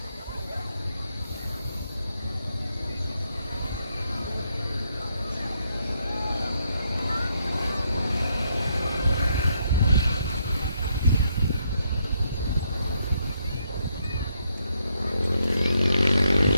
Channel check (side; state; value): both; inverted; correlation -0.75